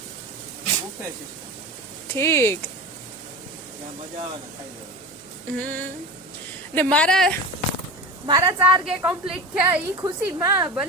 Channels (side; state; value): right; noise; hum, 29 dB below the sound